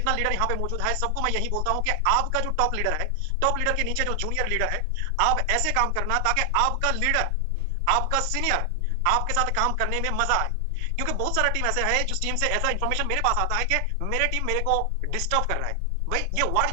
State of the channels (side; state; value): both; different; correlation 0.00